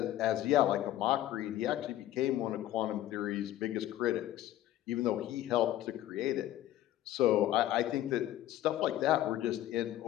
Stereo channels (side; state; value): right; quieter; 13.6 dB